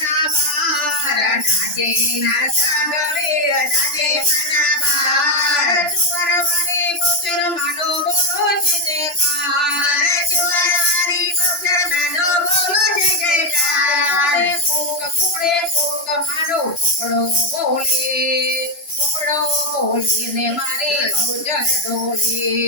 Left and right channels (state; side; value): late; right; 2.9 ms